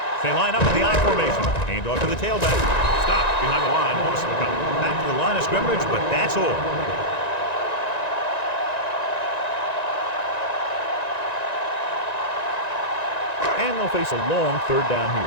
They line up in the I formation. Hand off to the tailback. Stop behind the line. Back to the line of scrimmage, but that's all. And they'll face a long third down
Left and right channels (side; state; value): right; late; 1.9 ms